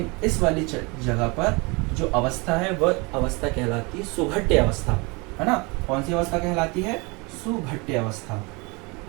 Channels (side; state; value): left; quieter; 27.8 dB